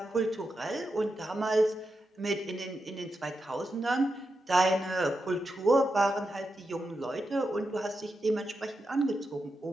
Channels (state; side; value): normal; both; correlation 0.87